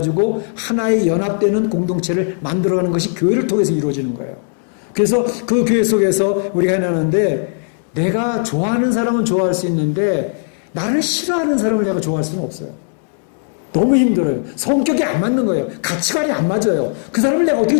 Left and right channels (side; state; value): right; silent; digital silence